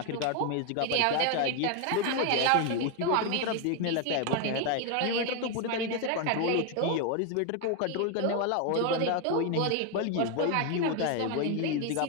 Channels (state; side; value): different; both; correlation 0.01